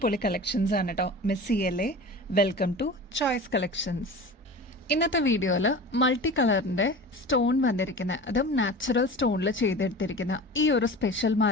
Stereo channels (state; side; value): normal; both; correlation 0.35